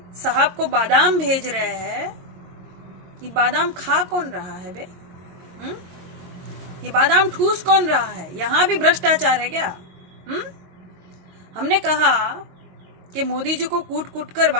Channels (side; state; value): left; late; 22 ms